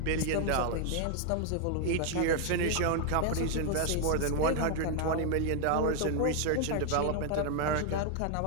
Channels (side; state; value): both; different; correlation 0.00